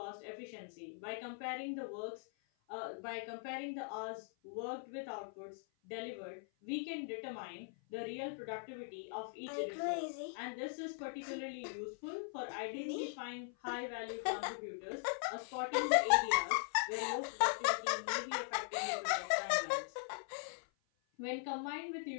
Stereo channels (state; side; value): silent; right; 51 dB below the other